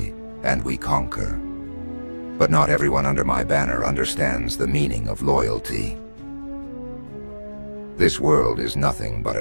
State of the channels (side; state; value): both; inverted; correlation -1.00